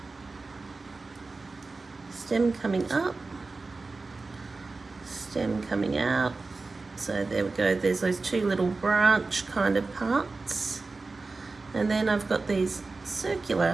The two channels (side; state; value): left; quieter; 3.8 dB